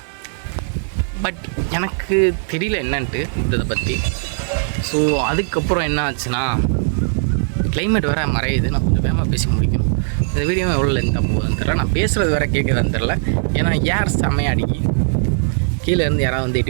பட் எனக்கு தெரியல என்னன்ட்டு இதை பற்றி. ஸோ அதுக்கப்புறம் என்ன ஆச்சுன்னா, கிளைமேட் வேறு மறையுது. நான் கொஞ்சம் வேகமாக பேசி முடிக்கணும். இந்த வீடியோ எவ்வளோ லென்த்தாக போகுதுன்னு தெரில, நான் பேசுகிறது வேறு கேட்குதான்னு தெரில. ஏன்னா ஏர் செம்மையாக அடிக்கி கீழே இருந்து யாராவது வந்து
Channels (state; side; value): silent; left; digital silence